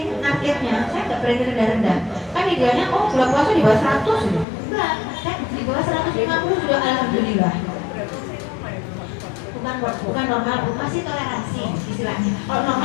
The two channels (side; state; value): right; drops out; at 4.5 s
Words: targetnya, saya nggak berani rendah-rendah. Kan idealnya, gula puasa di bawah 100, enggak, saya di bawah 150 sudah alhamdulillah. Bukan normal, masih toleransi istilahnya. Kalau